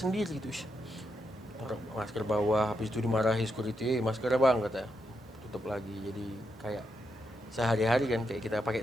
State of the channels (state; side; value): normal; both; correlation 0.83